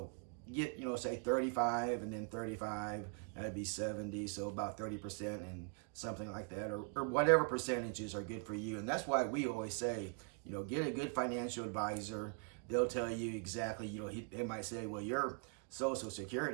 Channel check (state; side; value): quieter; left; 37.0 dB